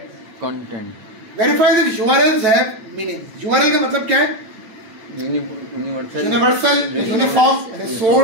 Verify that URLs have meaning. URL का मतलब क्या है, यूनिवर्सल यूनिफॉर्म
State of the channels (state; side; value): late; left; 9.0 ms